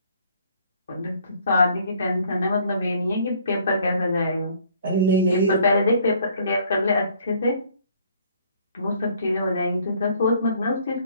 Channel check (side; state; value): both; inverted; correlation -0.61